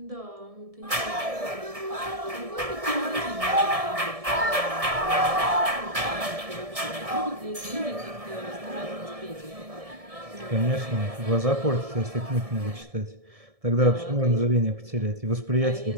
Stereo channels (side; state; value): left; late; 1.7 ms